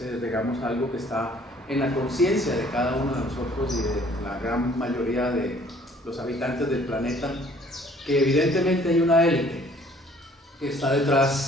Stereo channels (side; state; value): both; normal; correlation 0.57